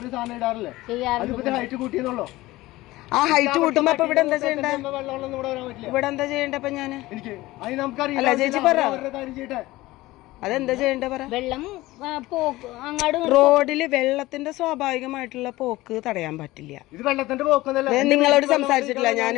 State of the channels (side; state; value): right; quieter; 18.5 dB